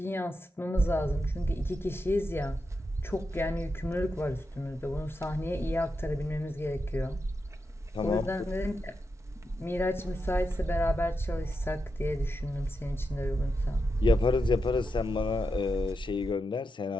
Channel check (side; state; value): both; normal; correlation 0.87